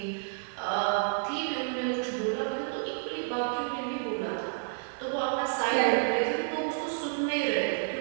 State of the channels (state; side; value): silent; left; digital silence